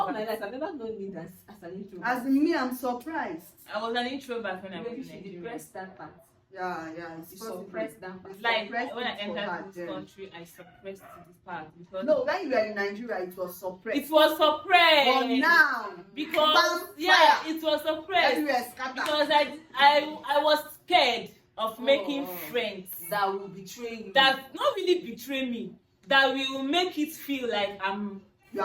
my introvert. life I've never known me as an introvert. As in me, I'm surprised. I was an introvert when I was Maybe in she Nigeria. depressed that part. Yeah, it's You possible. suppressed that part. Like Suppressed when I it for her entered this then. country, I suppressed this part because No, when you were in Nigeria, it was suppressed. it was suppressed. But now, Because fire. it was suppressed everywhere scattered. because I was scared of making friends That will betray you. that not really betray me, that will make it feel like You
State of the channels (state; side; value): identical; both; correlation 1.00